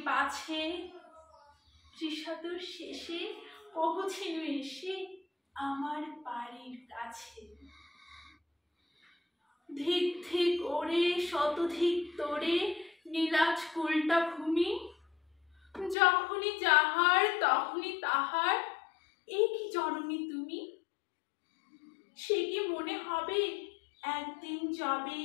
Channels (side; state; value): right; drops out; at 16.0 s